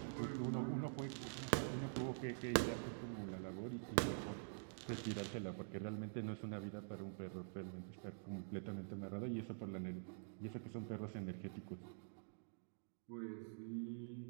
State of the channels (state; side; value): silent; left; digital silence